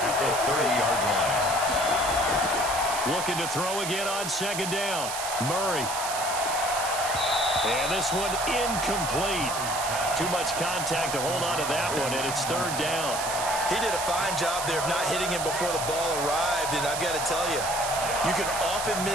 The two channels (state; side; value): noise; right; hiss, 5 dB below the sound